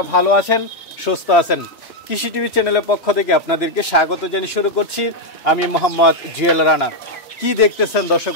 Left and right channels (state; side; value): normal; both; correlation 0.01